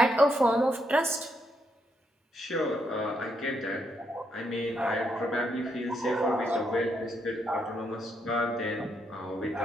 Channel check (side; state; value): both; normal; correlation 0.77